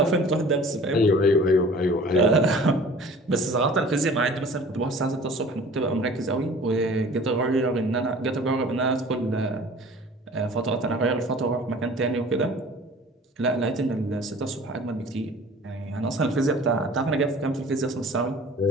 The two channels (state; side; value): normal; both; correlation 0.46